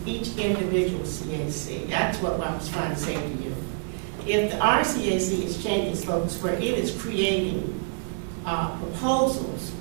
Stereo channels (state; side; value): silent; left; digital silence